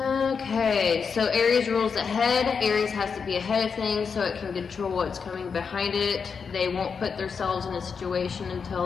so Aries rules ahead. Aries has to be ahead of things so it can control what's coming behind it. They won't put themselves in a situation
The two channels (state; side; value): quieter; right; 5.9 dB